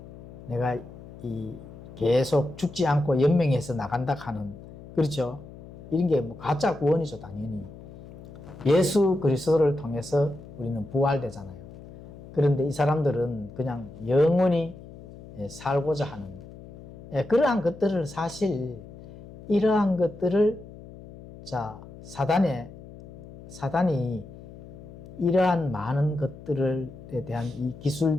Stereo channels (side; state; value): left; noise; hum, 17 dB below the sound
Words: 내가 이 계속 죽지 않고 연명해서 나간다 하는, 그렇죠? 이런 게 뭐 가짜 구원이죠, 당연히. 예수 그리스도를 통해서 우리는 부활되잖아요. 그런데 이 사람들은 그냥 영원히 살고자 하는, 그러한 것들을 사실, 이러한 것들을, 자, 사단이 이러한 많은 것들에 대한 이